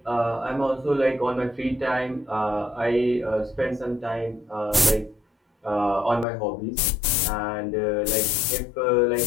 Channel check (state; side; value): drops out; right; at 6.2 s